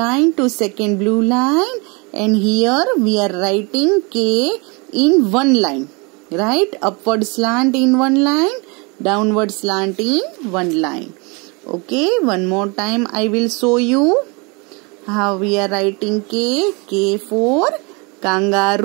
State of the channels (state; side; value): quieter; left; 29.8 dB